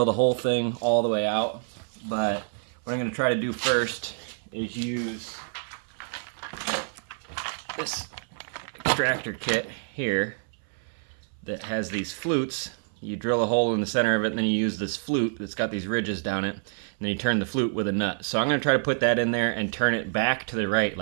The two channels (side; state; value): left; silent; 58 dB below the other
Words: the whole thing all the way out. But what I'm gonna try to do first is use this extractor kit here that has these flutes. You drill a hole in the center of it, and then you use this flute that's got these ridges down it, and then you turn the flute with a nut. So I'm going to try to put that in there and turn it back to the right,